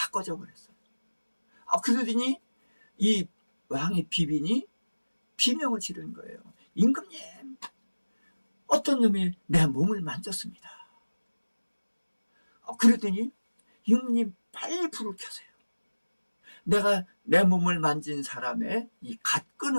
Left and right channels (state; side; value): inverted; both; correlation -1.00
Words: 꺼져버렸어요. 그러더니 이 왕의 비빈이 비명을 지르는 거예요. 임금님, 어떤 놈이 내 몸을 만졌습니다. 그러더니 임금님 빨리 불을 켜세요. 내가 내 몸을 만진 사람의 이